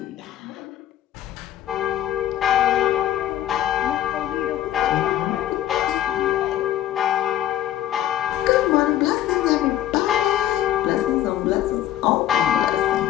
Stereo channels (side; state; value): right; quieter; 12.2 dB